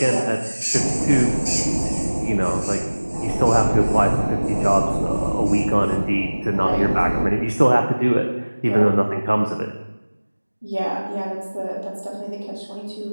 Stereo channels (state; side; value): inverted; both; correlation -1.00